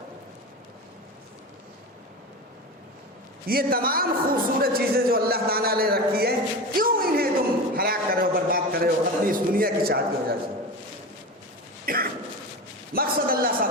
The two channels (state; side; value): normal; both; correlation 0.26